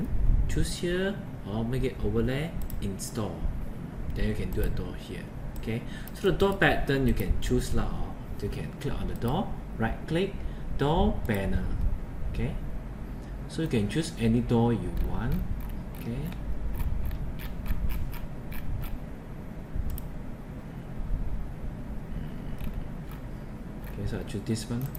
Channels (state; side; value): identical; both; correlation 1.00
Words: choose here or make it overlay, install. Then you can do a door here. Okay, so the door pattern you can choose lah, or you can click on the door, right click, door panel. Okay, so you can choose any door you want. Okay, so I choose this one.